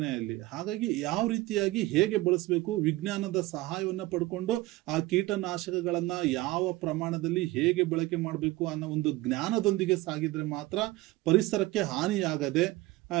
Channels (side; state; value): left; quieter; 18.9 dB